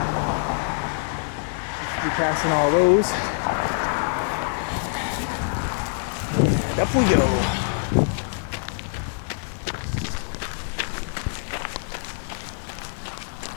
be passing all those. And up we go.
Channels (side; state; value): right; silent; digital silence